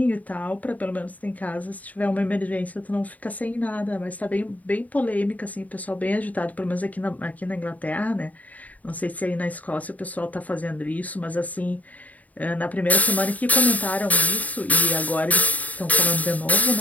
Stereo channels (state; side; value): late; right; 0.073 ms